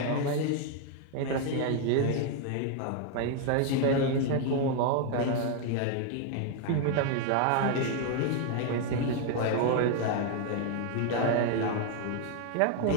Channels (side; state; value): both; different; correlation 0.00